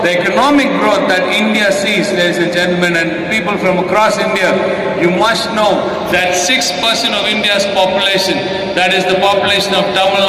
the economic growth that India sees, ladies and gentlemen, and people from across India, you must know that 6% of India's population, that is the population of Tamil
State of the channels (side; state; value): both; identical; correlation 1.00